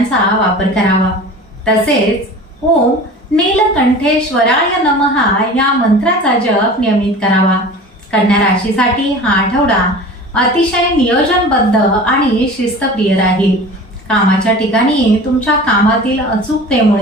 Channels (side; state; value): both; normal; correlation 0.38